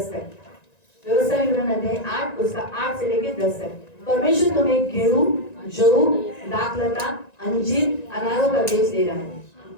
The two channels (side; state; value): right; late; 1.9 ms